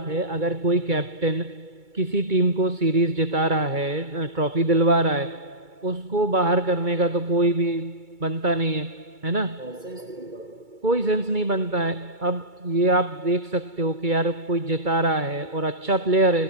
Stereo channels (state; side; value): late; left; 2.3 ms